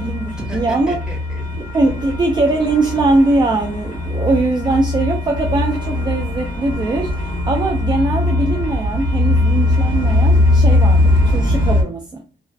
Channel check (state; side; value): normal; both; correlation 0.67